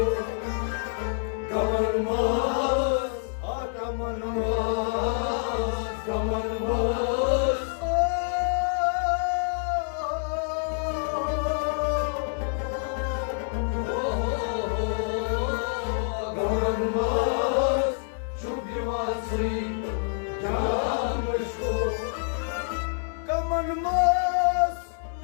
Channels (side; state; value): right; silent; 60 dB below the other